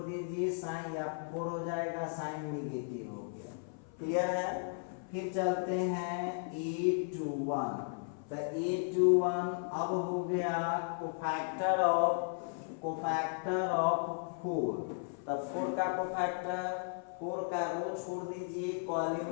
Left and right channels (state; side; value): silent; right; 54 dB below the other